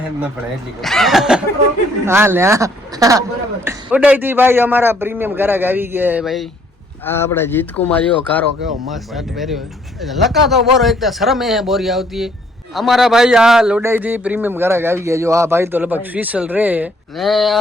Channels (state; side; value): normal; both; correlation 0.64